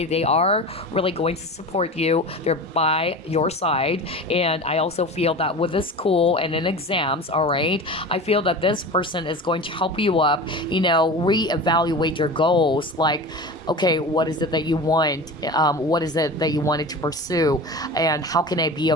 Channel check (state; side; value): normal; both; correlation 0.32